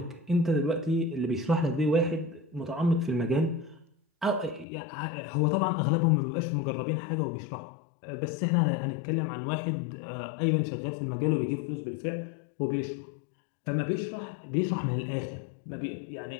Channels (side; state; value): right; drops out; at 4.7 s